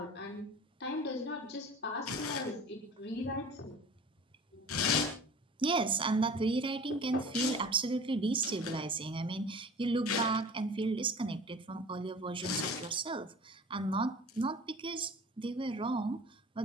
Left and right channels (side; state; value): both; normal; correlation 0.41